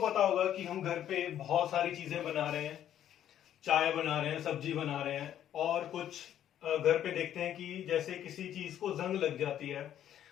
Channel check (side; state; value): right; quieter; 10.8 dB